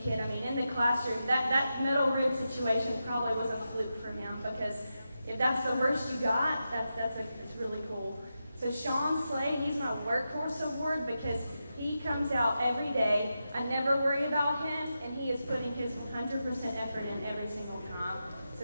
kid. I mean, in the classroom, that metal rib situation probably was a fluke for him because if that's the worst you got, it's really cool. So Sean Slade, he's my workhorse award because he comes out every day. I never worry about him, and he is putting his 100% effort in every single time.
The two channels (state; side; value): inverted; both; correlation -0.89